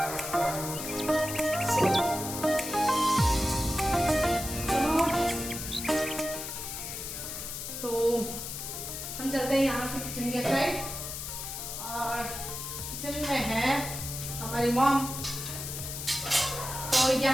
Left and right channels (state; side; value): noise; left; hiss, 6 dB below the sound